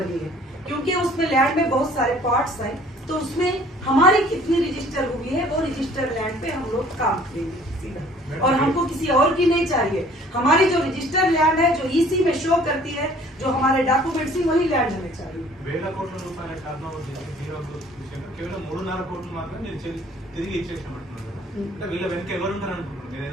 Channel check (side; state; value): both; normal; correlation 0.54